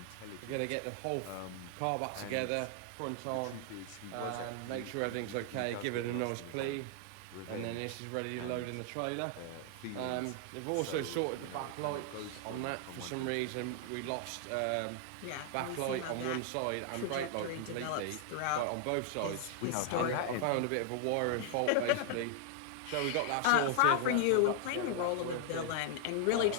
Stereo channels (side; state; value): both; different; correlation 0.00